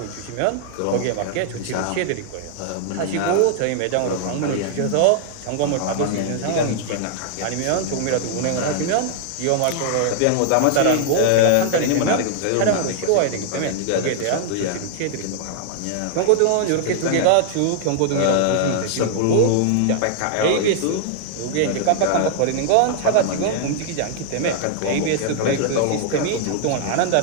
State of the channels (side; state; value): both; different; correlation -0.01